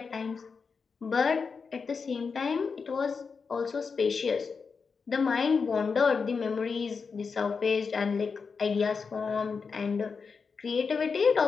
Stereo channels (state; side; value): quieter; right; 5.3 dB